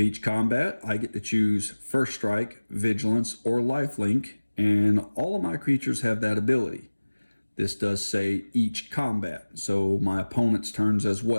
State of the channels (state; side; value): inverted; both; correlation -1.00